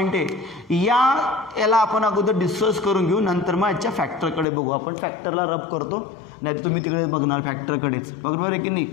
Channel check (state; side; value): drops out; right; at 4.5 s